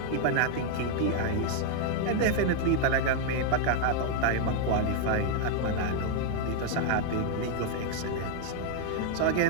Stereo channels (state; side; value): different; both; correlation 0.00